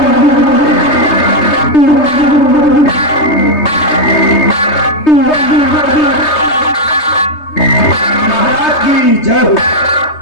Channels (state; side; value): late; right; 3.2 ms